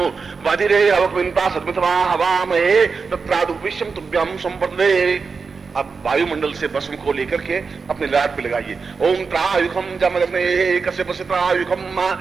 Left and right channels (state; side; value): quieter; left; 5.0 dB